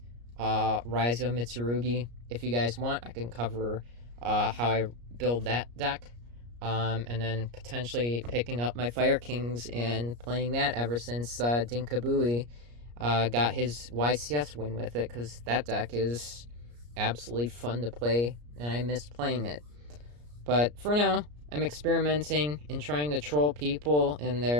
Raizo Mitsurugi, if you guys want, I can cover how I build that deck. And then potentially picking up my Fire Kings and playing that ever since Dinkabui got his YCS win with it, because that deck is absolutely fun to play, and I missed playing it. But for now, I'm experimenting and trying to troll people in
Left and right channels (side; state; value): left; late; 34 ms